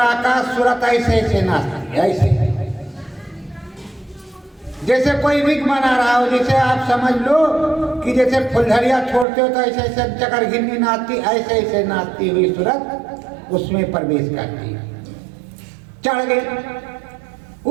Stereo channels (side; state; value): left; drops out; at 9.2 s